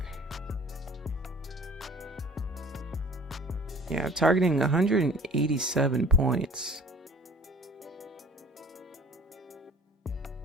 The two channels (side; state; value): both; normal; correlation 0.47